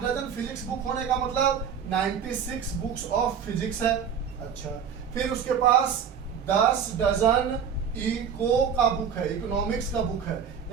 डजन फिजिक्स बुक होने का मतलब 96 बुक्स ऑफ फिजिक्स है। अच्छा, फिर उसके पास 10 डजन इको का बुक है, इकोनॉमिक्स का बुक है।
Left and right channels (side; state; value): left; quieter; 7.4 dB